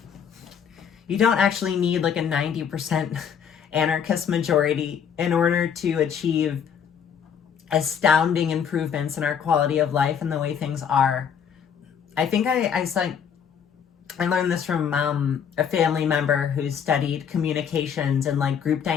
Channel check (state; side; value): quieter; right; 7.6 dB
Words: you don't actually need, like, a 90% anarchist majority in order to achieve astounding improvements in our quality of life and the way things are. I think I learned this from a family member who studied communications and like group